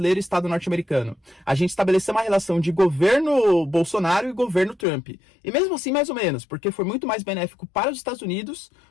e Estado norte-americano. A gente estabeleceu uma relação de governo Bolsonaro e governo Trump. E mesmo assim, mais ou menos, porque foi muito mais benéfico para os Estados Unidos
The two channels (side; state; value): right; drops out; at 4.9 s